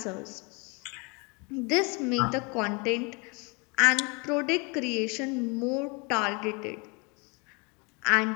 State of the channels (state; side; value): quieter; right; 30.7 dB